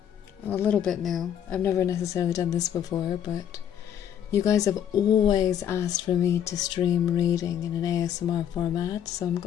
A little bit new. I've never necessarily done this before, but you guys have always asked for me to stream reading in an ASMR format, so I'm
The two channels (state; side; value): quieter; right; 9.6 dB